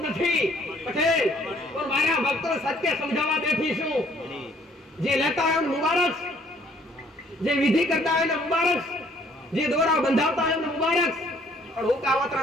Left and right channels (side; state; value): both; normal; correlation 0.61